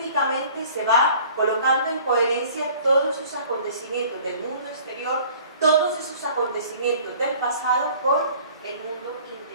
se va colocando en coherencia todos esos acontecimientos del mundo exterior, todos esos acontecimientos del pasado con el mundo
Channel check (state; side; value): inverted; both; correlation -0.50